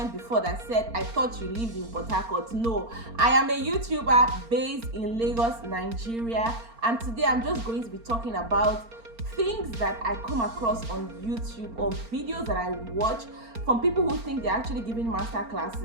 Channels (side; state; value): left; late; 4.4 ms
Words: before that said I thought you lived in Port Harcourt. No, I am a YouTuber based in Lagos, Nigeria, and today I'm just going to be talking about things that I come across on YouTube or videos that I watch from people who think they're actually giving master